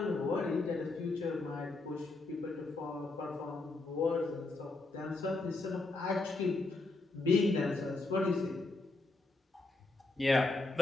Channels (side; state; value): right; quieter; 3.3 dB